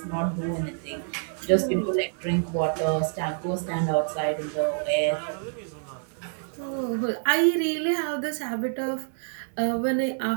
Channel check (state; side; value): silent; left; digital silence